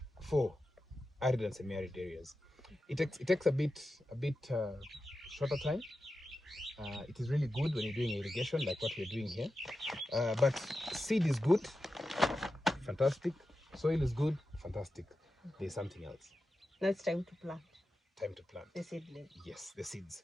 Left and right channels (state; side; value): normal; both; correlation 0.91